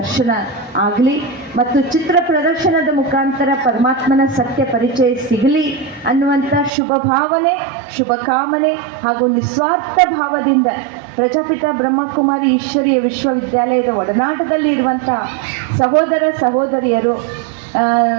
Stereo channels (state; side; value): drops out; left; at 6.7 s